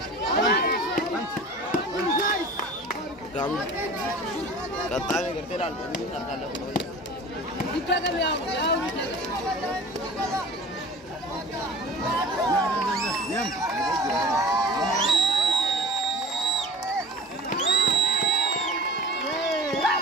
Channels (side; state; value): both; normal; correlation 0.40